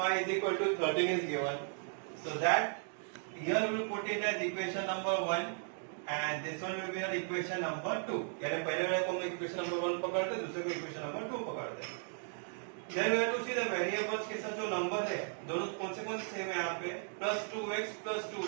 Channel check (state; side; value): silent; left; 54 dB below the other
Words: is equal to 13 is given. So that here we will put it as equation number 1 and this one will be our equation number 2. यानी पहले वाले को हम equation number 1 पकड़ते, दूसरे को equation number 2 पकड़ते. Then we have to see the variables के साथ जो number है, दोनों कौन से सेम है यहाँ पे plus 2x plus